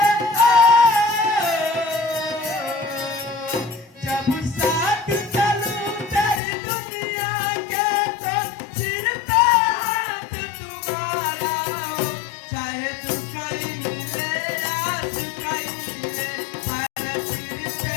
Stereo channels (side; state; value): right; drops out; at 6.4 s